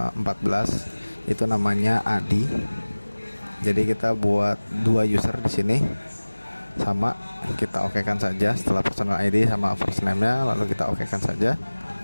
itu namanya Adi. Jadi kita buat 2 user di sini. Sama, kita OK-kan saja setelah personal ID sama first name-nya, lalu kita OK-kan saja.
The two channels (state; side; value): inverted; both; correlation -1.00